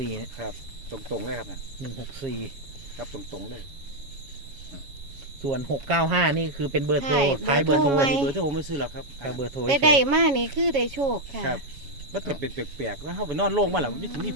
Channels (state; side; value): late; left; 7.3 ms